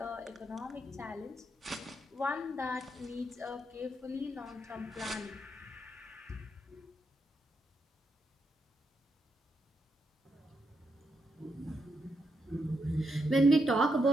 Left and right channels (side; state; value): both; normal; correlation 0.81